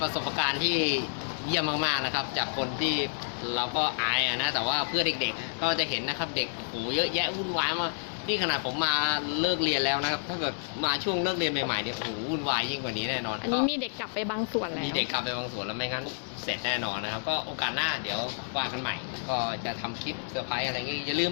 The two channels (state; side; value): silent; right; 58 dB below the other